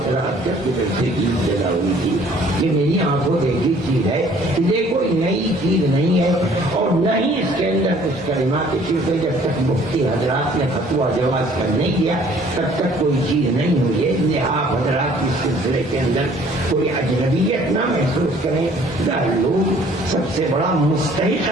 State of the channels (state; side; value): normal; both; correlation 0.56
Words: قرأت کے جلسے کی ابتدا ہوئی تھی۔ یہ میری آنکھوں دیکھی چیز ہے، یہ کوئی نئی چیز نہیں ہے اور نہ ہی اس کے اندر کچھ کلمات شرک، جب تک مفتی حضرات نے فتویٰ جواز کا نہیں دیا تب تک کوئی چیز نہیں ہوئی ہے۔ اس لیے آپ حضرات اس سلسلے کے اندر کوئی اجنبیت نہ محسوس کریں۔ دارالعلوم سب سے بڑا مستحق